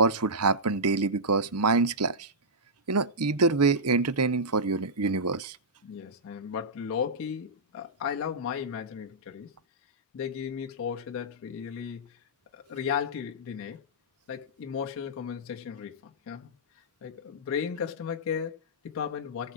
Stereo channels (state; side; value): normal; both; correlation -0.12